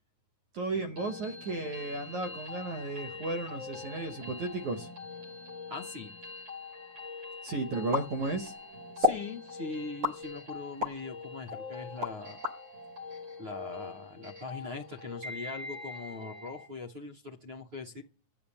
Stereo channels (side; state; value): left; late; 9.4 ms